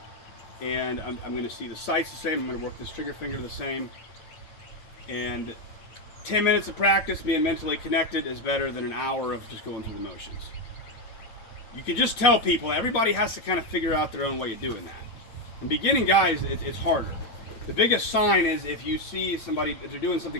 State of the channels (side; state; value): right; late; 8.8 ms